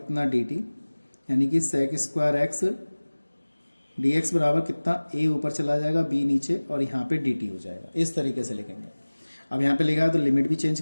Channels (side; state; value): both; inverted; correlation -1.00